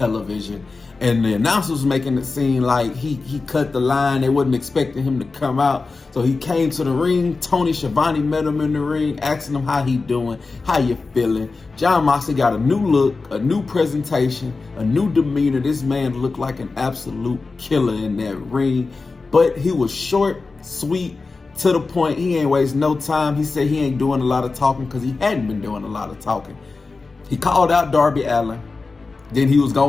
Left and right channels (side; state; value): right; quieter; 4.0 dB